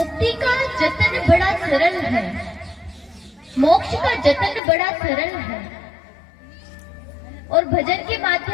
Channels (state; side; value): drops out; right; at 4.6 s